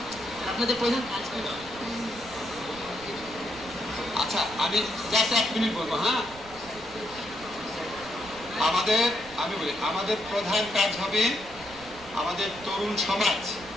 আপনাদের প্রধান কাজ। আচ্ছা, আমি জাস্ট 1 মিনিট বলবো। হ্যাঁ, আমি বলি আমাদের প্রধান কাজ হবে আমাদের তরুণ সমাজ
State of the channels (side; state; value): right; noise; rumble, 19 dB below the sound